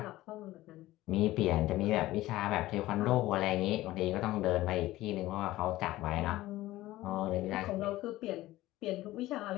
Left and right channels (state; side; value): quieter; right; 16.7 dB